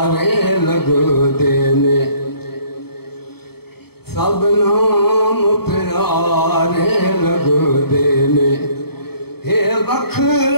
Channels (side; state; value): right; late; 0.96 ms